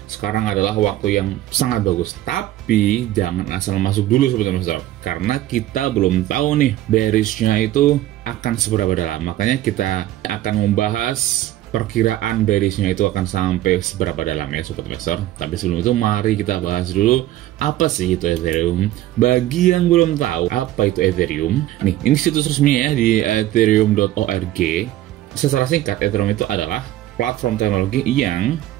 Sekarang adalah waktu yang sangat bagus, tapi jangan asal masuk dulu Sobat Investor karena kita belum tahu nih bearishnya itu akan seberapa dalam. Makanya kita akan membahas perkiraan bearishnya itu akan sampai seberapa dalam ya Sobat Investor. Tapi sebelum itu mari kita bahas dulu apa sih itu Ethereum. Bagi yang belum tahu apa itu Ethereum, nih ini situs resmi ya di ethereum.org. Secara singkat, Ethereum itu adalah platform teknologi yang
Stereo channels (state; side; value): quieter; left; 14.2 dB